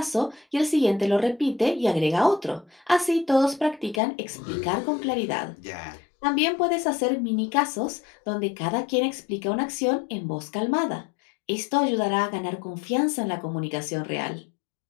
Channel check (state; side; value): drops out; right; at 4.0 s